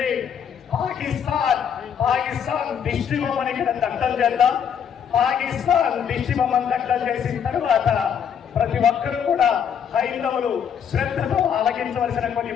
పాకిస్తాన్ దిష్టి బొమ్మని ఇక్కడ దగ్ధం చేద్దాం. పాకిస్తాన్ దిష్టి బొమ్మను దగ్ధం చేసిన తర్వాత ప్రతి ఒక్కరూ కూడా హైందవులు శ్రద్ధతో ఆలకించవలసిన కొన్ని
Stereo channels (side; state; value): right; quieter; 7.9 dB